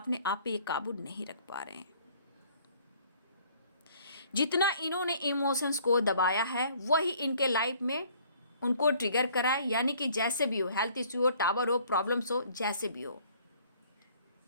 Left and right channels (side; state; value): both; inverted; correlation -0.57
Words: आप पे ये काबू नहीं रख पा रहे हैं। जितना इन्होंने इमोशंस को दबाया है वही इनके लाइफ में उनको ट्रिगर करा है, यानी कि जैसे भी हो, हेल्थ इश्यू हो, टावर हो, प्रॉब्लम्स हो, जैसे भी हो,